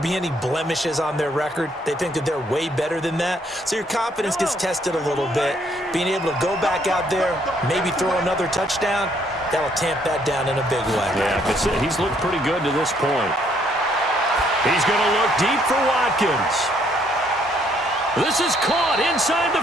be any blemishes on their record. They think that they're way better than that. So your confidence gets tested a little bit. Being able to go back out there, maybe throw another touchdown, that'll tamp that down in a big way. Yeah, because he's looked pretty good to this point. He's going to look deep for Watkins. This is caught inside the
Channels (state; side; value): normal; both; correlation 0.68